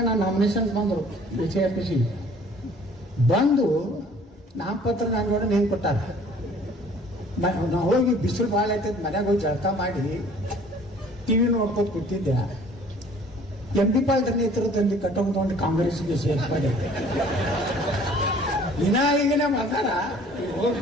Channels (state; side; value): normal; both; correlation 0.53